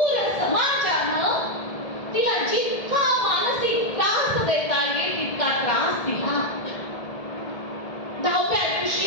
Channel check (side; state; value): right; late; 1.7 ms